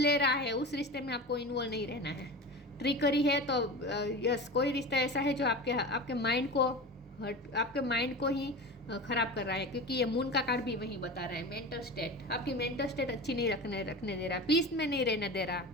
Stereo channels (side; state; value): both; normal; correlation 0.30